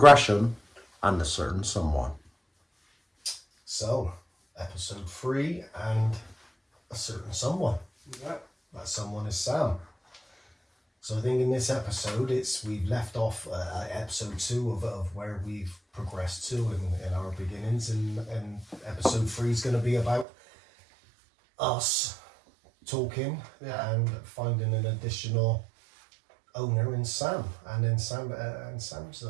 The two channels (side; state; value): left; drops out; at 20.2 s